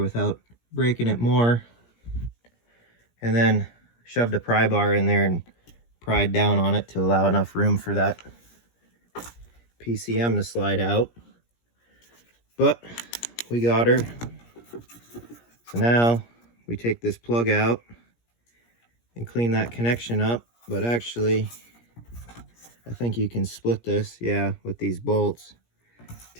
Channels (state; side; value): late; right; 17 ms